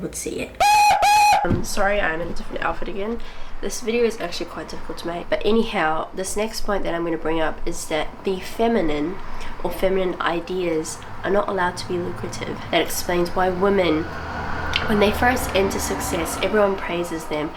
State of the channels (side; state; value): both; identical; correlation 1.00